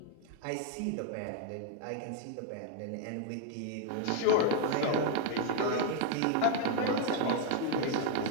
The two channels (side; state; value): both; different; correlation 0.01